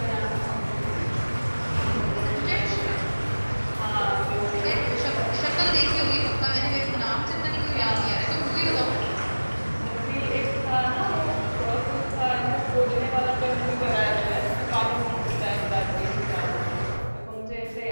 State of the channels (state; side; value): inverted; both; correlation -1.00